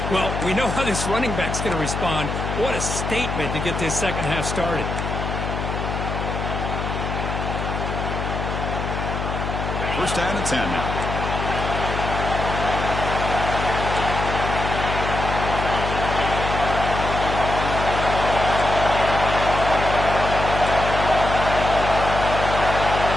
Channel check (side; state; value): left; noise; hum, 3 dB below the sound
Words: Well, we know how this running back's going to respond. What a statement to get this second half started. First down and 10 now.